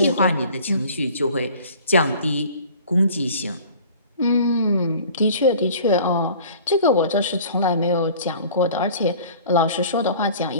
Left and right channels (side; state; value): both; inverted; correlation -0.47